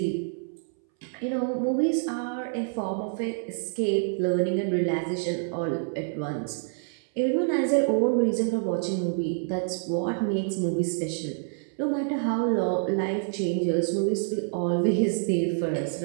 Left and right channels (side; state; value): left; silent; 60 dB below the other